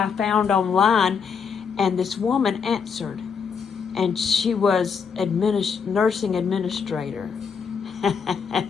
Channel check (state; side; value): quieter; right; 6.2 dB